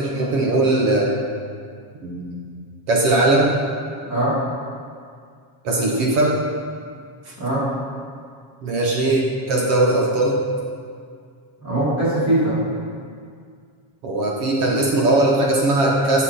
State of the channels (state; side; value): late; left; 7.3 ms